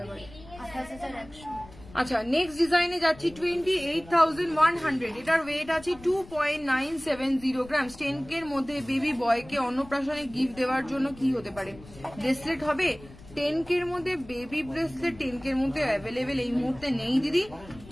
যাবে। আচ্ছা নেক্সট ডিজাইনে যাচ্ছি 28,100, এটার ওয়েট আছে 2.970 গ্রাম। 10K এর মধ্যে বেবি বয়কে অন্নপ্রাশনে গিফট দেওয়ার জন্য কি হতে পারে? ব্রেসলেট হবে। 10K এর মধ্যে বেবি ব্রেসলেট 10K এর মধ্যে অ্যাভেলেবেল এই মুহূর্তে নেই দিদি,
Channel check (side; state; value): left; noise; rumble, 20 dB below the sound